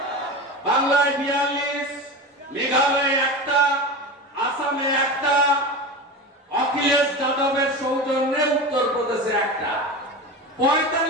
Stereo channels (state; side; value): normal; both; correlation 0.26